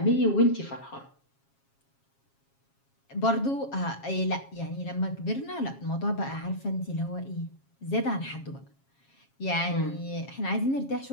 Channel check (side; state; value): right; late; 7.3 ms